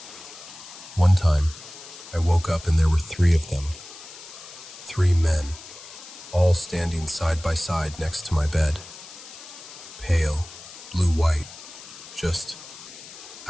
One time, I woke up and there were 3 of them. 3 men, all standing side by side next to my bed. Pale, blue-white, just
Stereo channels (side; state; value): left; noise; hiss, 16 dB below the sound